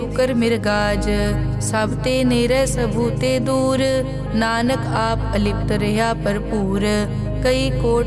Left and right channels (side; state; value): both; identical; correlation 1.00